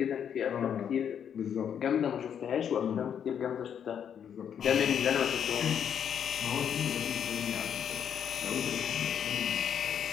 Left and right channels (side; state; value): right; quieter; 8.4 dB